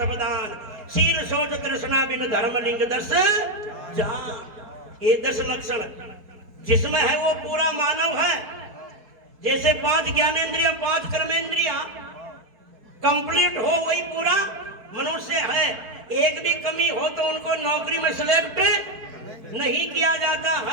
शील शौच तृष्णा बिन धर्म लिंग 10 जान। ये 10 लक्षण जिसमें है वो पूरा मानव है। जैसे 5 ज्ञानेंद्रियां 5 कर्मेंद्रियां कंप्लीट हो वही पूरा मनुष्य है। एक भी कमी हो तो उनको नौकरी में सिलेक्ट नहीं किया जाता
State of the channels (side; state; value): left; late; 4.6 ms